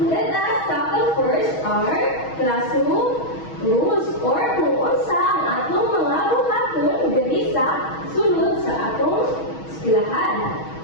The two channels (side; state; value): right; late; 6.2 ms